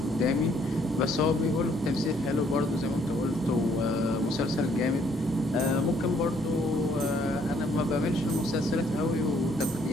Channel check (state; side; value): normal; both; correlation 0.66